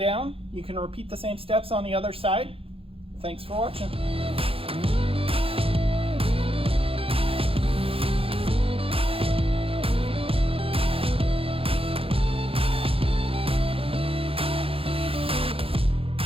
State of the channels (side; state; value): left; late; 0.27 ms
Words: you can repeat the same steps on the other side. Thanks for watching.